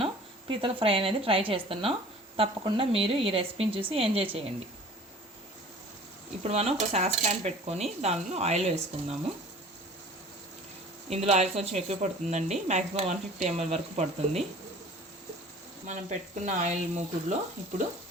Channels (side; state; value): both; normal; correlation 0.46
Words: పీతల ఫ్రై అనేది ట్రై చేస్తున్నాం. తప్పకుండా మీరు ఈ రెసిపీని చూసి ఎంజాయ్ చేయండి. ఇప్పుడు మనం ఒక సాస్ ప్యాన్ పెట్టుకొని దానిలో ఆయిల్ వేసుకుందాము. ఇందులో ఆయిల్ కొంచెం ఎక్కువ పడుతుందండి, మ్యాక్సిమం 150 ml వరకు పడుతుంది. మనం పెట్టుకున్న ఆయిల్ మూకుడులో ఇప్పుడు